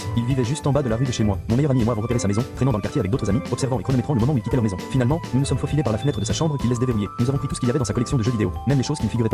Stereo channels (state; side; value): identical; both; correlation 1.00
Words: Il vivait juste en bas de la rue de chez moi. Mon meilleur ami et moi avons repéré sa maison, traînant dans le quartier avec d'autres amis, observant et chronométrant le moment où il quittait leur maison. Finalement, nous nous sommes faufilés par la fenêtre de sa chambre qu'il laisse déverrouiller. Nous avons pris tout ce qu'il y avait dans sa collection de jeux vidéo, même les choses qui ne figuraient